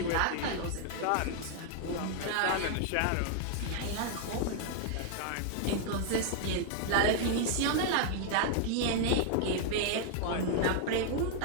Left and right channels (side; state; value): both; different; correlation 0.00